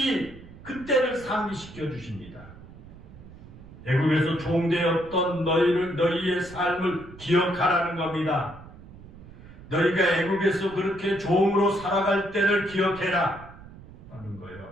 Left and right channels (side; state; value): right; noise; rumble, 18 dB below the sound